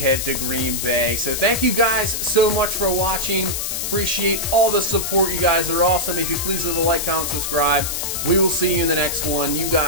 to Green Bay. So thank you guys so much for watching. Appreciate all the support. You guys are awesome. If you please leave a like, comment, subscribe. We will see you in the next one. You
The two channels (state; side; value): noise; left; hiss, 2 dB below the sound